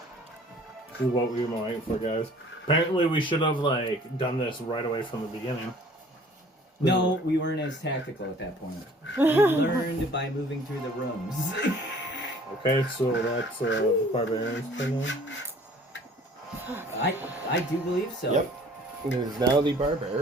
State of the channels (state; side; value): normal; both; correlation 0.52